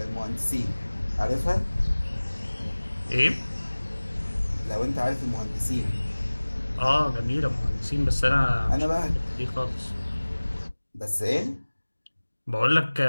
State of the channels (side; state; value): both; inverted; correlation -1.00